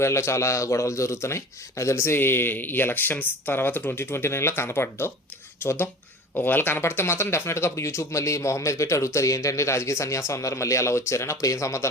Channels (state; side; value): normal; both; correlation 0.38